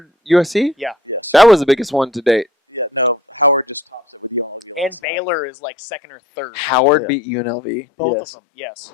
USC. Yeah, That was the biggest one to date. Yeah, no, Howard just tops it. and Baylor is like second or third. Howard beat UNLV. Both of them. Yes,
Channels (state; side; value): drops out; right; at 5.0 s